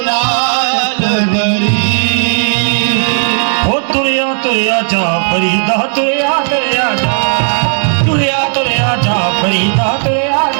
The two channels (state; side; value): silent; left; digital silence